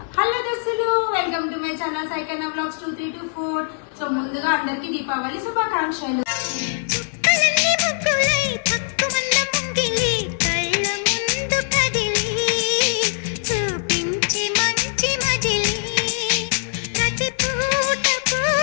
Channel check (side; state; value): right; silent; 64 dB below the other